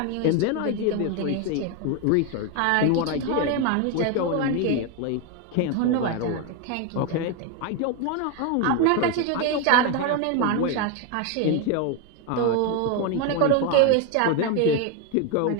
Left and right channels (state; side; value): different; both; correlation 0.02